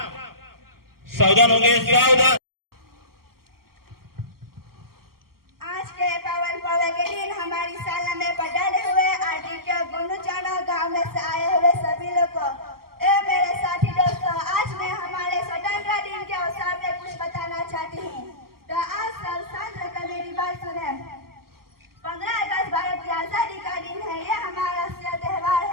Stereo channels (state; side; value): late; left; 0.93 ms